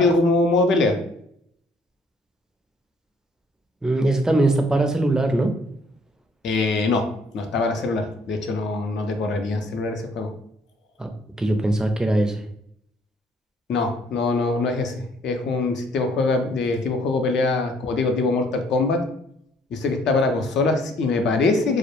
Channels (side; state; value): both; normal; correlation 0.62